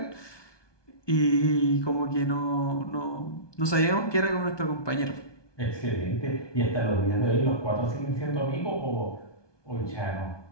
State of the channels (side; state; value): right; late; 1.2 ms